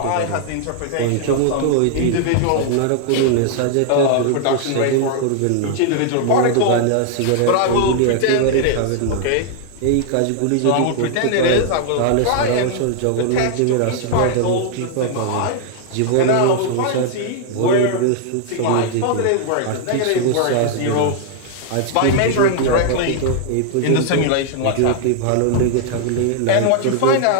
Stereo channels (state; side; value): different; both; correlation 0.00